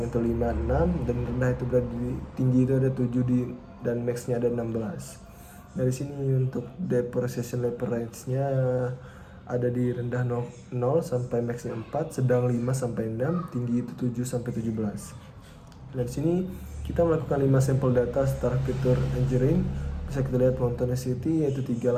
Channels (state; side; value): identical; both; correlation 1.00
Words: itu 5, 6, dan rendah itu berada di tinggi itu ada 7 dan maxnya ada 16. Nah, di sini untuk depreciation level range-nya ada di rendah 0 sampai maxnya 4, sedang 5 sampai 6, tinggi itu 7 sampai 17. Nah, di sini kita melakukan 5 sampel data secara fitur engineering. Bisa kita lihat monsonicity yaitu